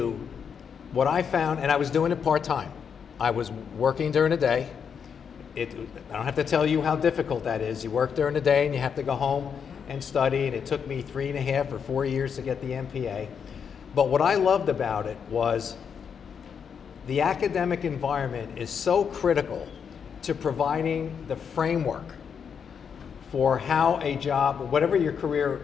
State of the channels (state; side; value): quieter; right; 7.0 dB